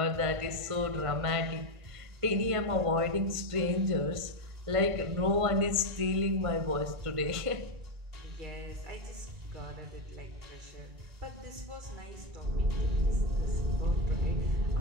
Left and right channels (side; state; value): left; late; 1.5 ms